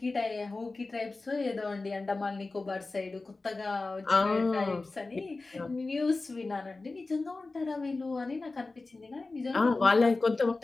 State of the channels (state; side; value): quieter; right; 3.5 dB